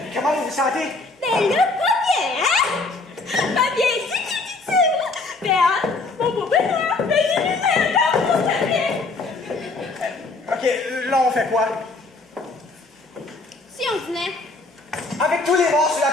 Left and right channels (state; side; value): quieter; right; 3.5 dB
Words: Comment vous vous sentez? Ben là, pas bien, hein? Pas bien, dit. Ben, hein, mon beau bonheur, ben, j'ai lu encore pour ta bien. OK, là, on fait quoi? Si on venait. Avec tous les morts sur la